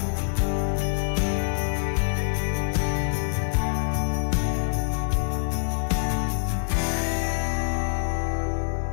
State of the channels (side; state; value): right; silent; digital silence